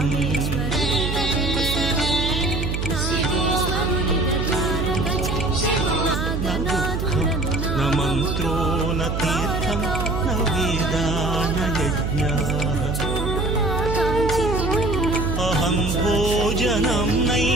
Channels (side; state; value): right; noise; hum, 1 dB below the sound